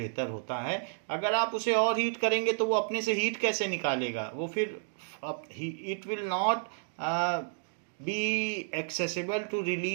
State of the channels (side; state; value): left; silent; digital silence